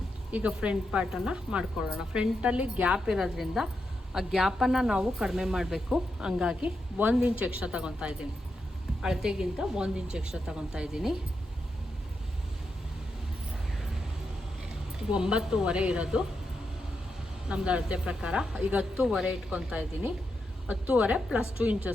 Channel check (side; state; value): both; normal; correlation 0.85